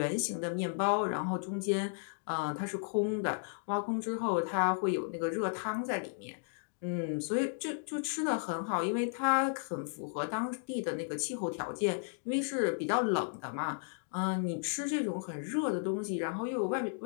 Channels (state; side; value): silent; right; digital silence